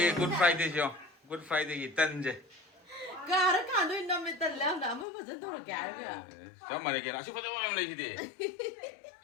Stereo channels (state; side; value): drops out; right; at 5.1 s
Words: 굿 프라이데이죠. 굿 프라이데이 딴제. 가라 간도 남에 달라 나 아무 버전 돌게 알가. 정말 이게 아주 포도만 올리지.